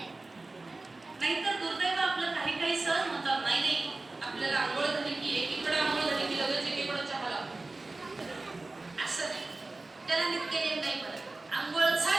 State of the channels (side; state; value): left; quieter; 3.2 dB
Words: नाहीतर दुर्दैव आपलं काही काही सहन होतात. नाही आपल्याला आंघोळ झाली की एकीकडे आंघोळ झाली की लगेच एकीकडे चहा लागतो. असं नाही, त्याला नित्यनेम नाही म्हणत. आंघोळ